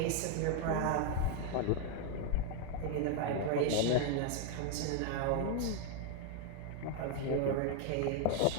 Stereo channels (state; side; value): different; both; correlation 0.00